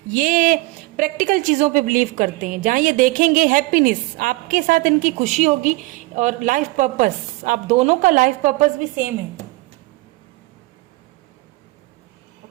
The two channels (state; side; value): quieter; left; 21.8 dB